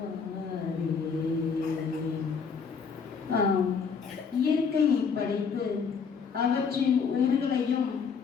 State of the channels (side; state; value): right; quieter; 5.9 dB